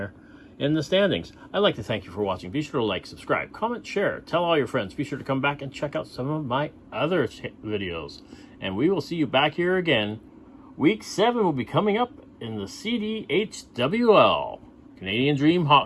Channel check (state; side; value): identical; both; correlation 1.00